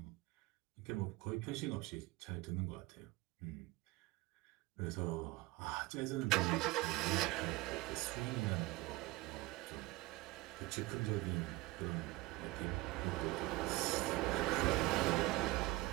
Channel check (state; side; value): quieter; left; 20.4 dB